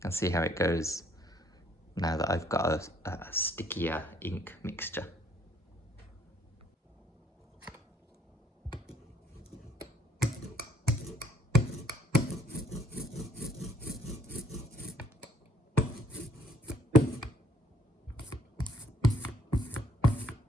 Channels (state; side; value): normal; both; correlation 0.64